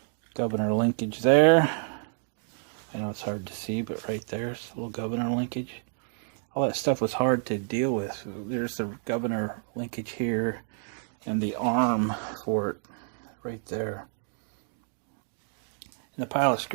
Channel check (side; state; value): left; silent; digital silence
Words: governor linkage there. I know it's hard to see, but right there's a little governor linkage. All that stuff was hard to deal with. There's the governor linkage here and the arm for it right there. And the pile of